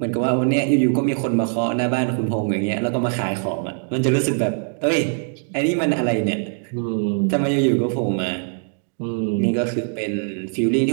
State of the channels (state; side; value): silent; left; 58 dB below the other